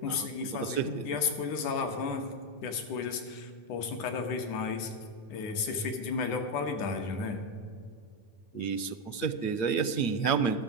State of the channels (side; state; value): right; late; 10 ms